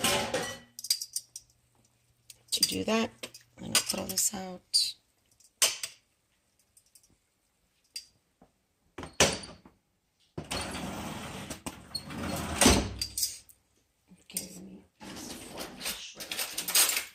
to do that. I'm gonna throw this out. Okay, let me use the fork to shred it.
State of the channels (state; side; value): identical; both; correlation 1.00